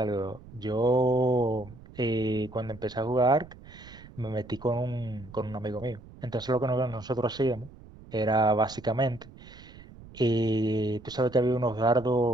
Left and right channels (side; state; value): right; noise; rumble, 19 dB below the sound